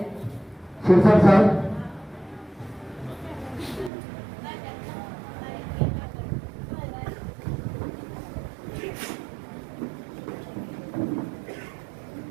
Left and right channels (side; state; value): left; drops out; at 3.9 s